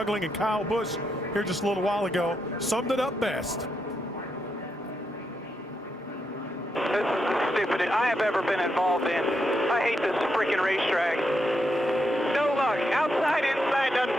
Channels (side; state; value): both; normal; correlation 0.82